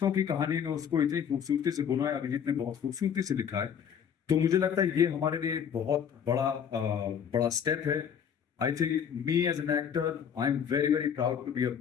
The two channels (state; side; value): quieter; right; 8.0 dB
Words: की कहानी में उसको इतनी खूबसूरती से बुना है, अभिजीत ने बहुत खूबसूरती से लिखा है। तो मुझे लगता है ये हमारे लिए एक बहुत बड़ा स्टेप है। I think me as an actor, I'm very, very proud to be a